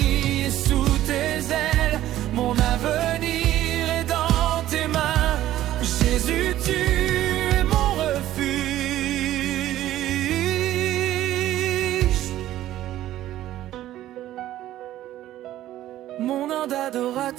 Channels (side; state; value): left; quieter; 13.7 dB